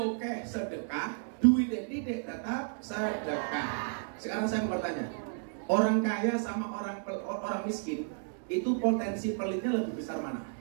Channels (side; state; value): left; silent; digital silence